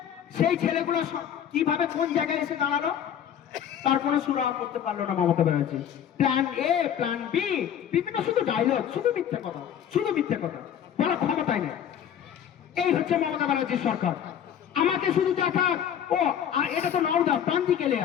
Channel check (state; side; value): quieter; right; 9.3 dB